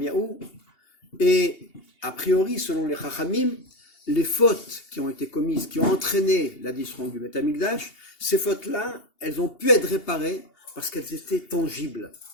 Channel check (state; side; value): late; right; 2.8 ms